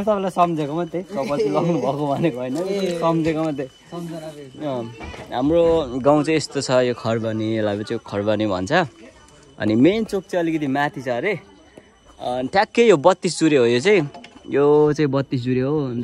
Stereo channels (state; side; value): identical; both; correlation 1.00